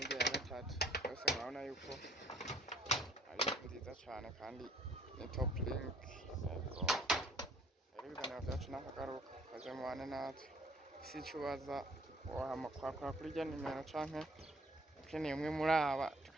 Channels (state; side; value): normal; both; correlation 0.60